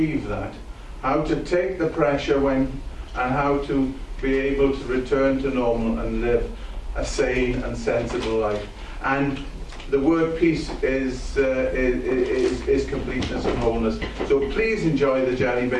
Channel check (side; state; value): both; identical; correlation 1.00